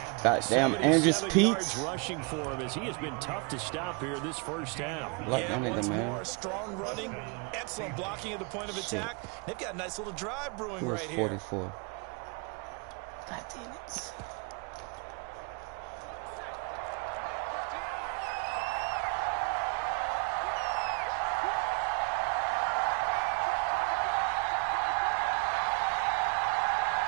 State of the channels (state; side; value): quieter; left; 33.3 dB